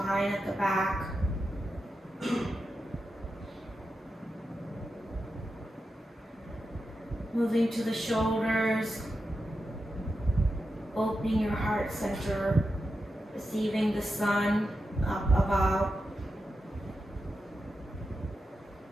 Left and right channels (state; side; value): normal; both; correlation 0.89